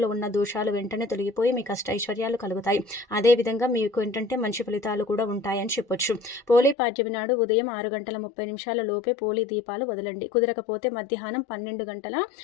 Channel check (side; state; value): right; drops out; at 6.8 s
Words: ఉన్న దోషాలు వెంటనే తొలగిపోయి మీ కష్టైశ్వర్యాలు కలుగుతాయి. అదేవిధంగా మీకు ఏంటంటే మంచి ఫలితాలు కూడా ఉంటాయని చెప్పొచ్చు. పోలీ పాడ్యమి నాడు ఉదయం 6:30 లోపే పోలీ దీపాలు వదలండి. కుదరకపోతే మధ్యాహ్నం